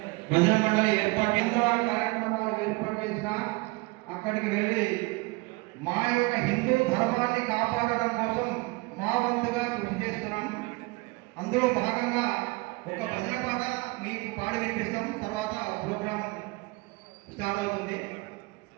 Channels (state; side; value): quieter; left; 25.5 dB